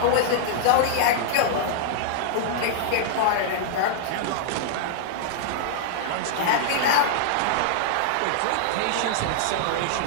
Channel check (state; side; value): different; both; correlation -0.01